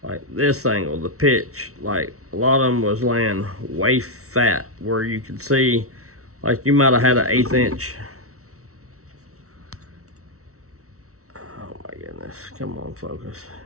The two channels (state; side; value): late; left; 0.64 ms